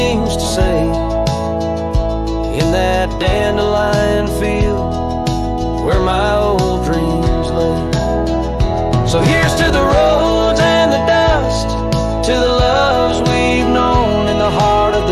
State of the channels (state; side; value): identical; both; correlation 1.00